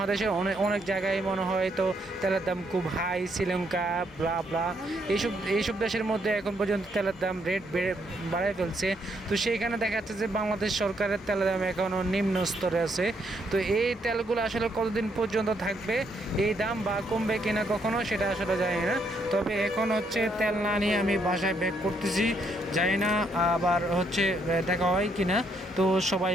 অনেক জায়গায় মনে হয় তো তেলের দাম খুব হাই, শ্রীলঙ্কা ব্লা ব্লা এইসব দেশের মধ্যে এখন পর্যন্ত তেলের দাম রেট বাড়ায় ফেলছে। তো সেইখানে দেখা যাচ্ছে যে বাংলাদেশ সরকারের তেলের দাম এখনও নিম্ন স্তরে আছে। তো এই তেলগুলো আসলে কতদিন পর্যন্ত থাকবে এই দাম, বা কমবে কিনা কখনো সেটা আসলে জানি না। তবে এখন হচ্ছে তেল না নিয়ে আমি বাসায় ব্যাক করতেছি, জানি না আবার হচ্ছে দেখা হয় কিনা। তো সবাই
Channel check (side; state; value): both; normal; correlation 0.73